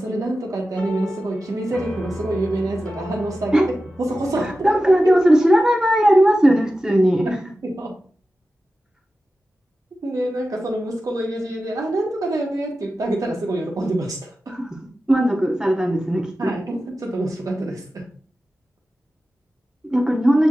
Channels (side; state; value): both; normal; correlation 0.93